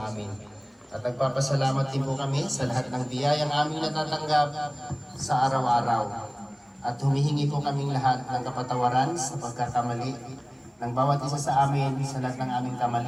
amin. At nagpapasalamat din po kami sa lahat ng biyayang aming natatanggap sa araw-araw. At humihingi po kaming lahat ng kapatawaran sa pagkakamali ng bawat isa sa amin sa lahat ng aming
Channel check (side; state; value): both; identical; correlation 1.00